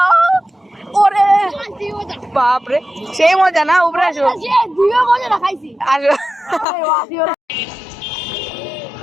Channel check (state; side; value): drops out; right; at 6.7 s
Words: ওরে বাপ রে, সেই মজা না? উপরে আসো, দুইও মজা না খাইছি। আসো।